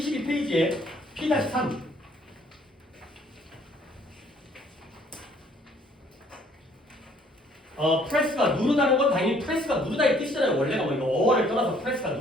P-3. 프레스가 누르다는 건 당연히 프레스가 누르다의 뜻이잖아요. 원래가 뭐 이거 어원을 떠나서 프레스가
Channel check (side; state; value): both; normal; correlation 0.61